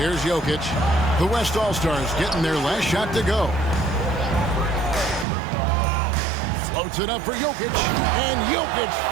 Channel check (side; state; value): left; drops out; at 5.2 s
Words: Jokic. The West All-Stars getting their last shot to go. Floats it up for Jokic, and Jokic